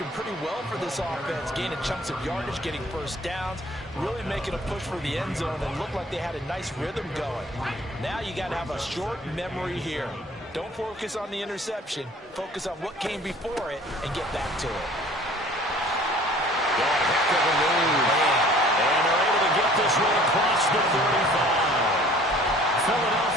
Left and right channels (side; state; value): both; normal; correlation 0.51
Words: pretty well for this offense. Gaining chunks of yardage, getting first downs, really making a push for the end zone, and looked like they had a nice rhythm going. Now you got to have a short memory here. Don't focus on the interception. Focus on what came before it and get back to it. Heck of a move. And they're able to get this one across the 35.